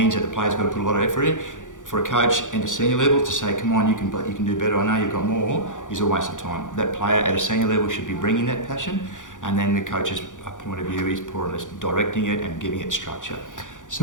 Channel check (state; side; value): late; right; 0.87 ms